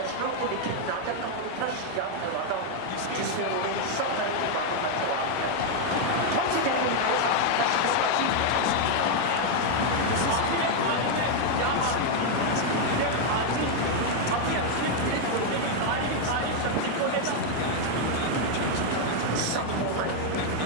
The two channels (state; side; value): different; both; correlation 0.00